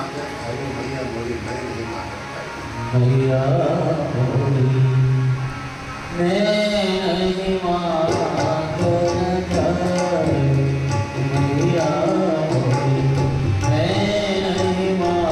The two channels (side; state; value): both; identical; correlation 1.00